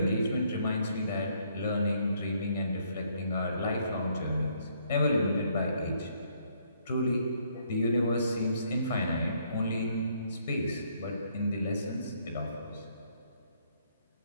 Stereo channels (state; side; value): inverted; both; correlation -0.69